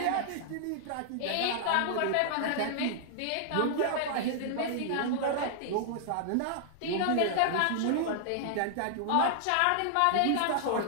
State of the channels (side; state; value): both; different; correlation -0.01